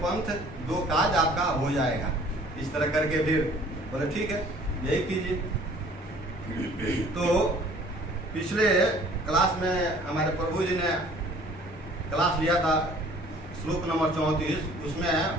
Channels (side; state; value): both; normal; correlation 0.53